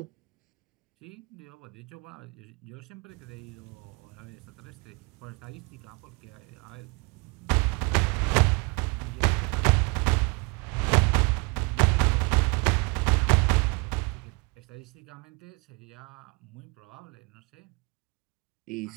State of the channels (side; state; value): left; quieter; 29.1 dB